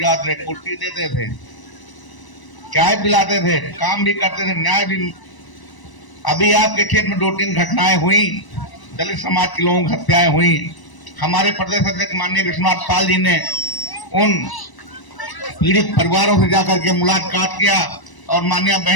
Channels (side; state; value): right; late; 1.0 ms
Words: थे, कुर्सी देते थे, चाय पिलाते थे, काम भी करते थे, न्याय भी। अभी आपके क्षेत्र में 2-3 घटनाएं हुई, दलित समाज के लोगों की हत्याएं हुई। हमारे प्रदेश अध्यक्ष माननीय विश्वनाथ पाल जी ने उन पीड़ित परिवारों से जाकर के मुलाकात किया और माननीय